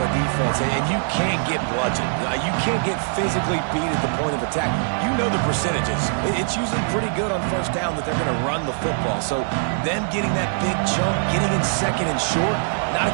defense, and you can't get bludgeoned. You can't get physically beat at the point of attack. You know the percentages. It's usually pretty good on first down that they're going to run the football. So them getting that big chunk, getting in second and short, not a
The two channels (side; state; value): left; silent; 64 dB below the other